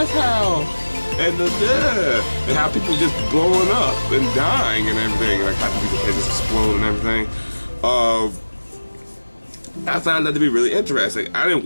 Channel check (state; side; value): inverted; both; correlation -1.00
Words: how. And how people just blowing up and dying and everything, like how people's heads just explode and everything. I found that to be really interesting. I didn't